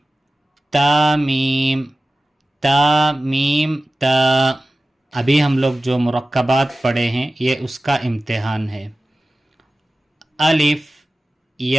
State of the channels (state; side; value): normal; both; correlation 0.96